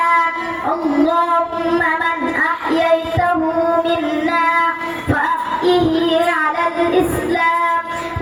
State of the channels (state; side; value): identical; both; correlation 1.00